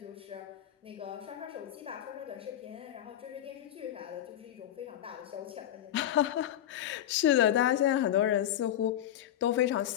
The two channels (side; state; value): right; quieter; 11.6 dB